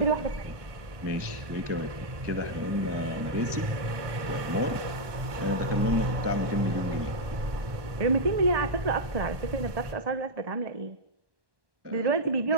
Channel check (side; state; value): left; late; 1.2 ms